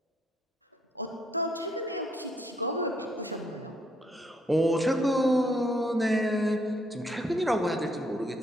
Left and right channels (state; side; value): normal; both; correlation 0.71